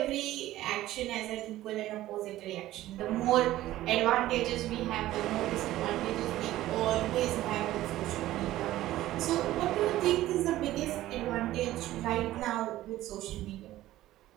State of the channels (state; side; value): quieter; left; 15.1 dB